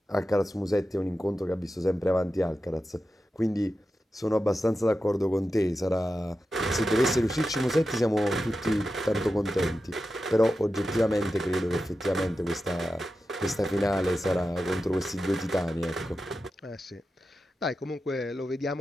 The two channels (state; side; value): normal; both; correlation 0.91